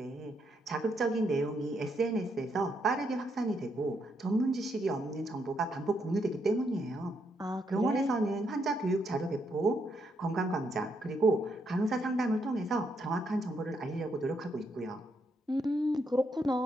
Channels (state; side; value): normal; both; correlation 0.77